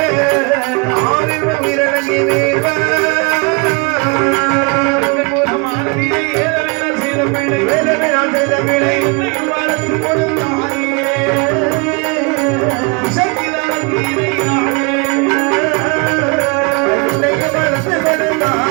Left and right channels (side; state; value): left; quieter; 30.9 dB